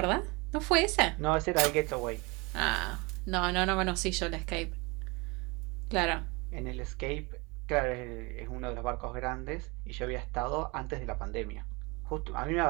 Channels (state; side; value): quieter; left; 26.7 dB